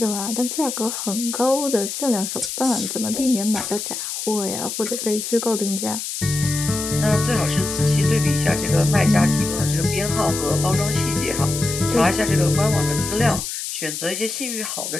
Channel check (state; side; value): noise; left; hiss, 5 dB below the sound